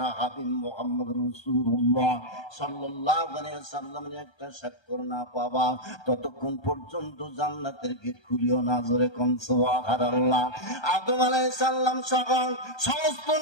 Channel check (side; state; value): right; late; 1.3 ms